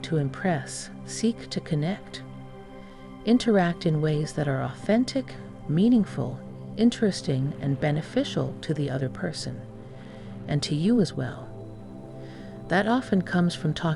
to impress, seek to connect. Interact in ways that are authentic, meaningful, interesting, and beneficial to the other person, and to you as well. That often comes from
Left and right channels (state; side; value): identical; both; correlation 1.00